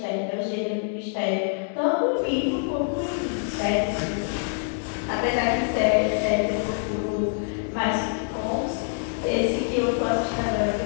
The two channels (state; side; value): silent; right; digital silence